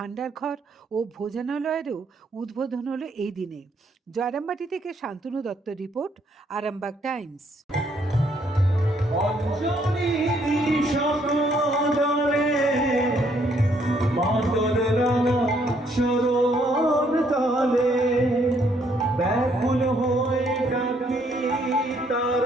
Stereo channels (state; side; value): normal; both; correlation 0.69